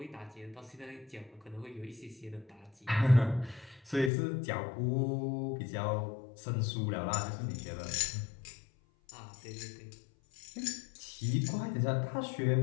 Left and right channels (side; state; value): right; drops out; at 4.1 s